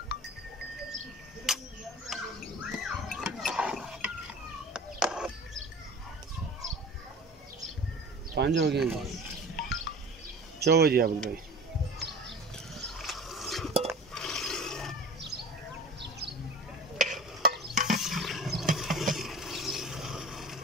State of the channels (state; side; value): normal; both; correlation 0.39